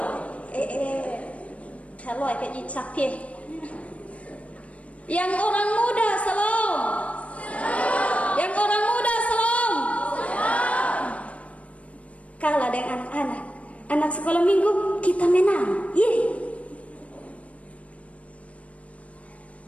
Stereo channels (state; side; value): late; right; 0.065 ms